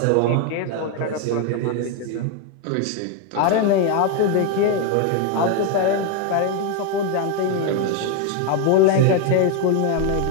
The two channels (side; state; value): both; different; correlation 0.01